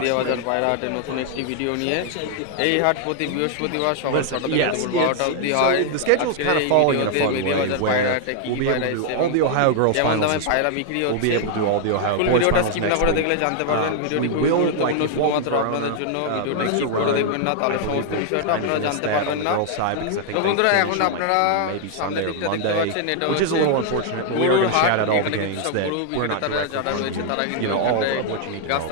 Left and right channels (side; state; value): both; different; correlation 0.00